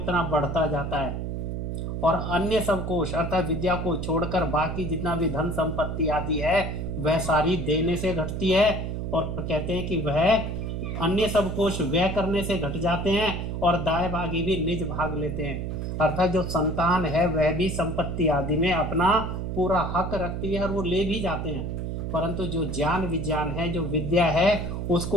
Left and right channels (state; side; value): noise; right; hum, 3 dB below the sound